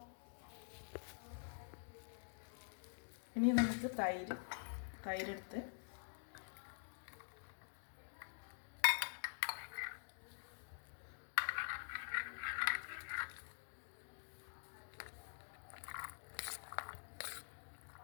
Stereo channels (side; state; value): right; silent; digital silence